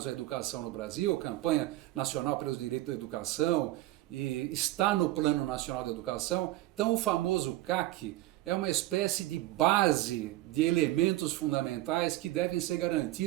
à educação no Brasil, Campanha Nacional pelos Direitos da Educação, e está no Plano Nacional de Educação. Então o famoso CAC é uma espécie de base de elementos fundamentais que devem ser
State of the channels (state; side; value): quieter; left; 16.8 dB